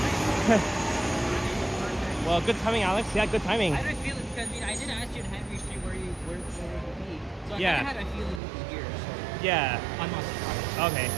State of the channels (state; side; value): drops out; left; at 8.4 s